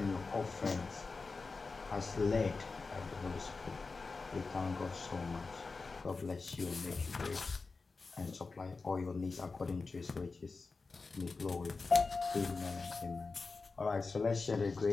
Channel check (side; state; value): right; quieter; 4.1 dB